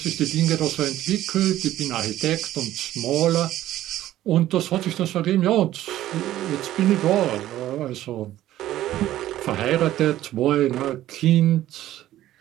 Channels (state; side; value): quieter; left; 13.8 dB